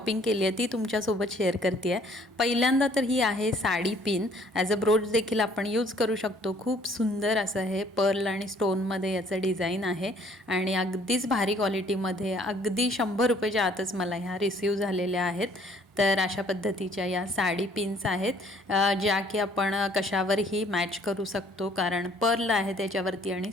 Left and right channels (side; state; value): both; normal; correlation 0.59